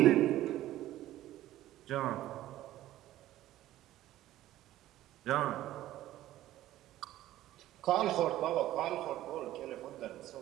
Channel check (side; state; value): left; quieter; 14.4 dB